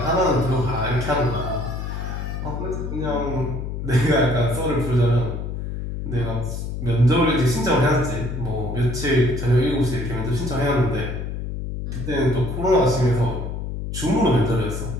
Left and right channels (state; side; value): noise; left; hum, 5 dB below the sound